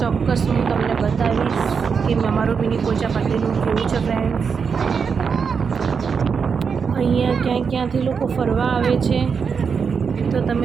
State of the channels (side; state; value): left; quieter; 6.0 dB